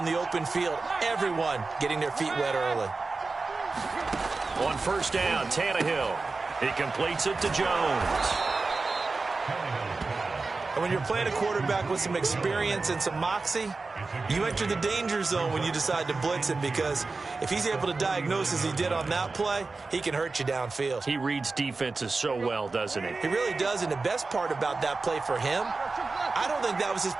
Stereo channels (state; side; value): quieter; left; 3.9 dB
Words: the open field. Everyone getting their feet wet early. On first down, Tannehill. He completes it to Jones. And when you're playing a quarterback with some experience and some moxie, you enter the danger zone when you decide to blitz him, because if he's able to diagnose as he did on that play, he can hurt you downfield. He reads defenses so well, doesn't he? He really does, and the best part about that play for him, I don't think that was his